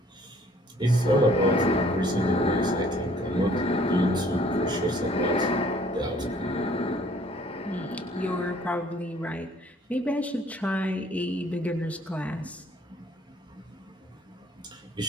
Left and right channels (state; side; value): normal; both; correlation 0.58